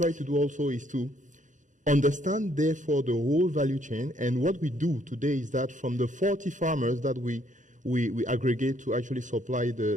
to do also is to understand, therefore, the whole value chain. And what we do today is that from the 40 farmers that we aggregate to actually supply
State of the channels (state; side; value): late; left; 0.36 ms